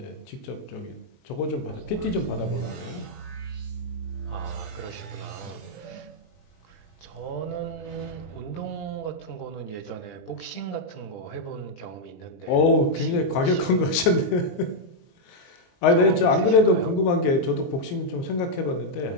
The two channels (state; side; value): late; right; 23 ms